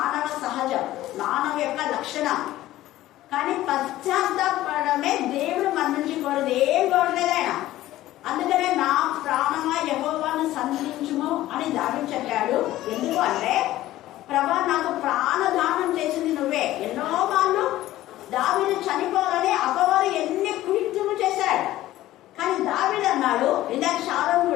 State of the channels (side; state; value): right; quieter; 15.2 dB